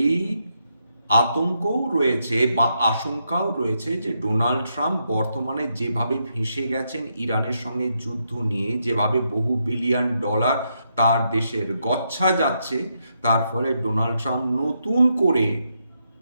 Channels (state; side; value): inverted; both; correlation -0.80